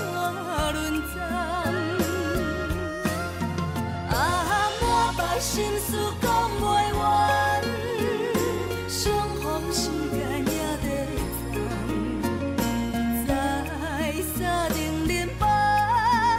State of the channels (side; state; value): both; identical; correlation 1.00